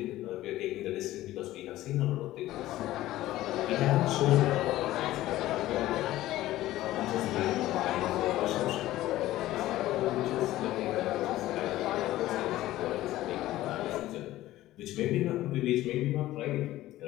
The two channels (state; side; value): quieter; right; 15.5 dB